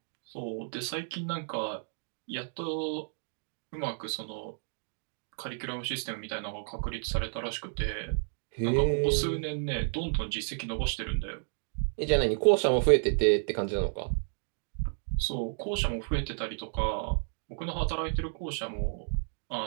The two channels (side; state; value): left; silent; digital silence